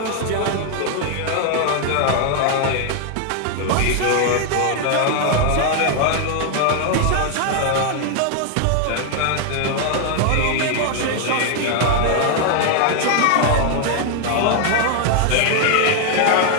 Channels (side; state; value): both; different; correlation 0.00